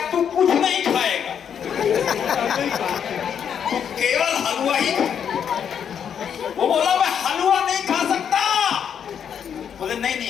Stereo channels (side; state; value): right; quieter; 8.1 dB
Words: तू कुछ नहीं खाएगा, तू केवल हलवा ही। वो बोला मैं हलवा नहीं खा सकता। बोले नहीं